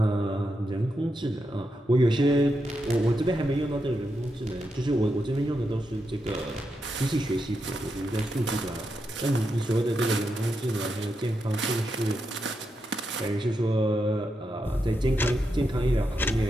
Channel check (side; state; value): both; normal; correlation 0.85